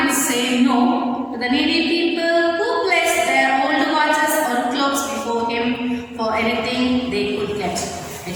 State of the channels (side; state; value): both; identical; correlation 1.00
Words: say no to the needy people who placed their old watches or clocks before him for anything they could get. I